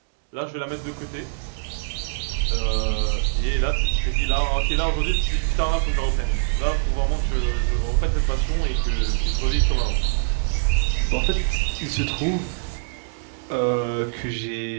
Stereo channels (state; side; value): silent; left; digital silence